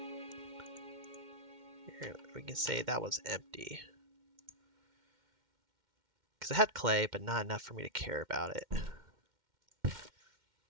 Here, we can say that was empty. Because it had clay, but not enough for me to care about it.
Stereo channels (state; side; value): late; left; 2.1 ms